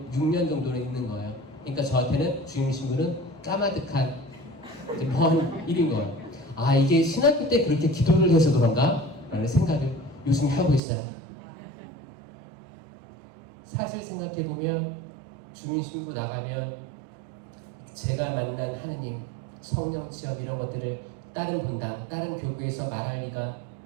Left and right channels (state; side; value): drops out; left; at 10.8 s